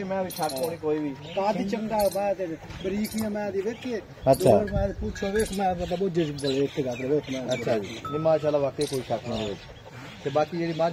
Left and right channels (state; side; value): identical; both; correlation 1.00